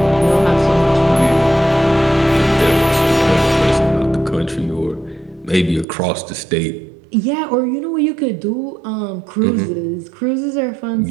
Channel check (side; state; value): left; drops out; at 5.9 s